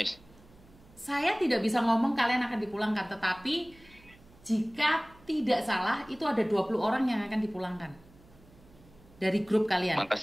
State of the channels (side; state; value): right; noise; hum, 26 dB below the sound